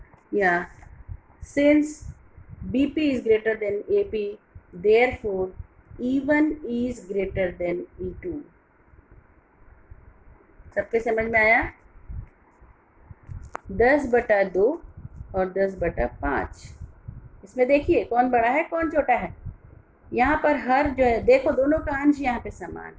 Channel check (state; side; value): identical; both; correlation 1.00